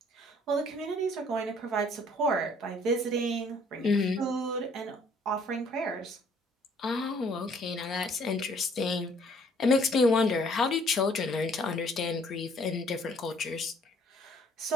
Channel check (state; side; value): normal; both; correlation 0.61